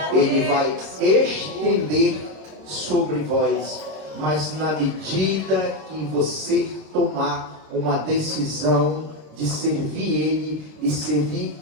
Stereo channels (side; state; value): left; late; 26 ms